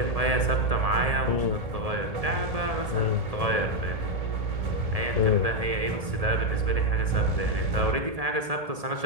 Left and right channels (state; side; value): late; left; 1.7 ms